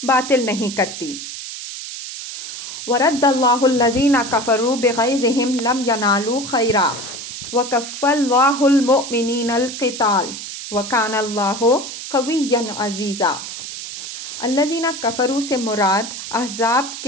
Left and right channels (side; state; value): right; noise; hiss, 9 dB below the sound